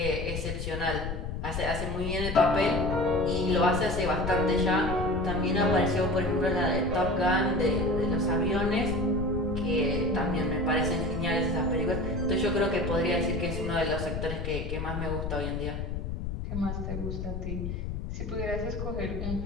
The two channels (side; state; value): left; noise; rumble, 4 dB below the sound